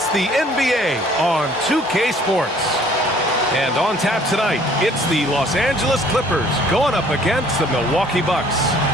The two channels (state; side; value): normal; both; correlation 0.57